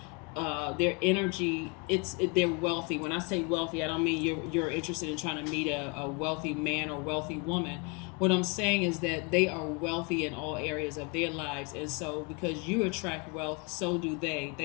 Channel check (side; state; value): right; quieter; 31.4 dB